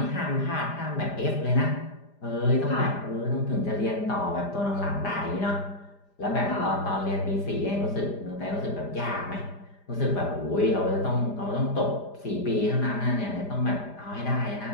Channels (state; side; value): late; right; 5.0 ms